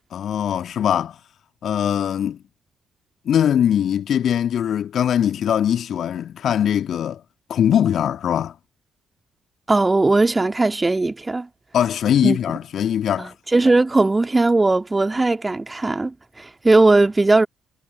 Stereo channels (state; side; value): normal; both; correlation 0.83